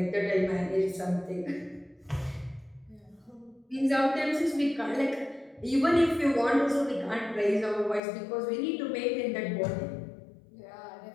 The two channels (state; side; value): drops out; right; at 8.0 s